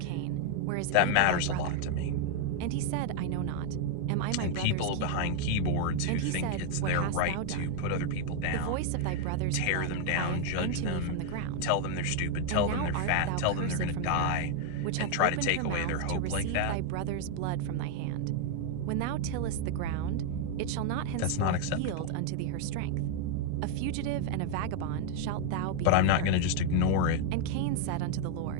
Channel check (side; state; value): both; different; correlation 0.00